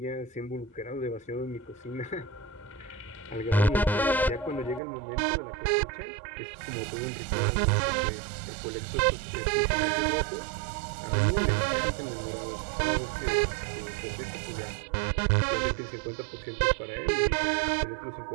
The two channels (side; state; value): left; drops out; at 4.8 s